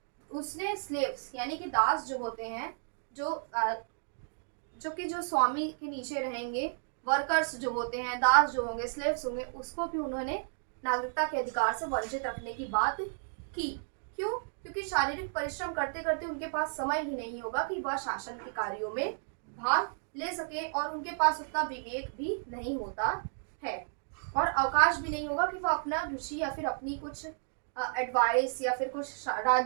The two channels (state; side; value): silent; left; digital silence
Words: उसने स्लेव्स यानी कि दास जो होते हैं, जो स्वामी के नीचे रहेंगे, वर्कर्स जो होते हैं, दास जो होंगे, स्लेव्स होंगे, उसको भी उन्होंने नागरिकता के अधिकार से वंचित रखने की बात की। क्यों? क्योंकि शारीरिक परिश्रम करते करते उनके पास समय ही नहीं होगा कि वह शासन के कार्यों में भाग ले सके, और उनके पास उतना विवेक भी नहीं होता है और अवकाश भी नहीं होगा कि वह अपना रुचि या फिर अपनी कुछ एडवाइस या फिर कुछ